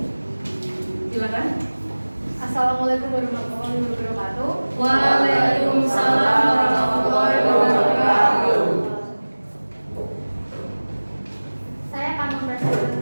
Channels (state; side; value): inverted; both; correlation -1.00